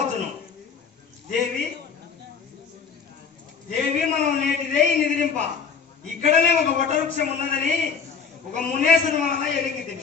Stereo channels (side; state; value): right; quieter; 6.1 dB